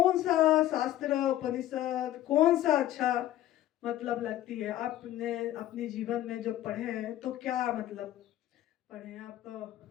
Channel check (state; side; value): quieter; right; 13.6 dB